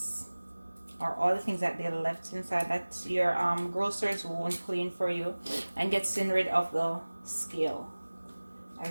or all the things that they left inside that your grocers won't clean for you, and getting rid of the scale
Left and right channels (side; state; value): both; inverted; correlation -1.00